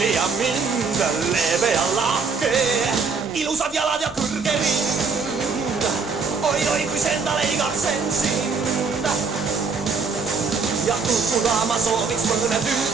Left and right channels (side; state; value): left; quieter; 4.8 dB